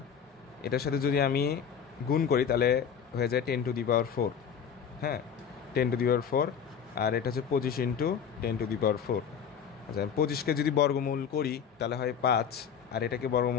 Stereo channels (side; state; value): right; quieter; 7.5 dB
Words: এটার সাথে যদি আমি গুণ করি, তাহলে হয়ে যায় 10⁻⁴। হ্যাঁ, 10⁻⁴, আর এটা হচ্ছে 25 ইন্টু 10⁻⁴। আচ্ছা, 25কে যদি বর্গমূল করি তাহলে হয় 5, আর এটাকে